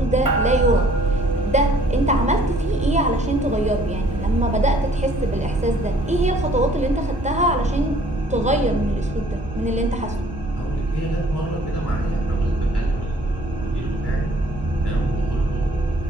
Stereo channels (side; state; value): both; normal; correlation 0.57